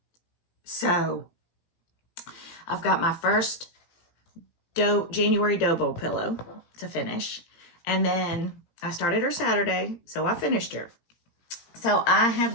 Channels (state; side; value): late; right; 17 ms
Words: So I've got my first January dough bowl pillow to finish. And then I started her Saturday, so I finished her. So I